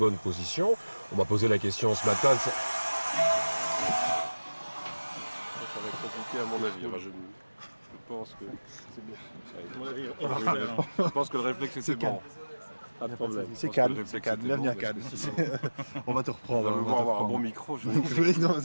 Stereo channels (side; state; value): both; inverted; correlation -1.00